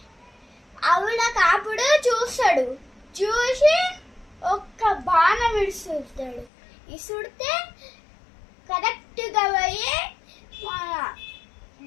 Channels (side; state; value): right; drops out; at 6.5 s